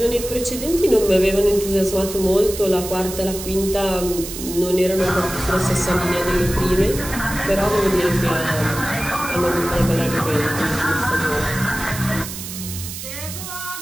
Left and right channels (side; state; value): right; noise; hiss, 9 dB below the sound